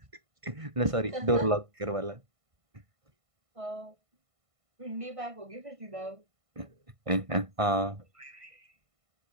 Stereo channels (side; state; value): left; late; 1.5 ms